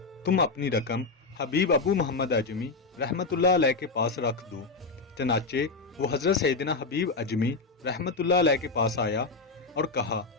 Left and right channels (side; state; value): right; quieter; 3.9 dB